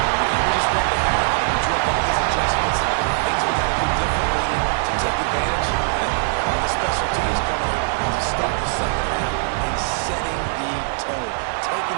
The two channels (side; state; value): left; silent; digital silence